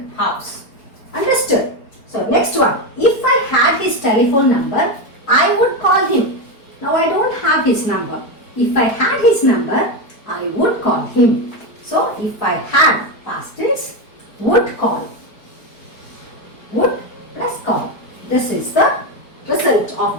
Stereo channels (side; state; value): right; late; 4.7 ms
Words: house. Understood? So, next one. If I had his telephone number, I would call him. Now, I don't have his number. If I had his number, I would call him. So, if I had past tense, would call. Would plus call. This is the result of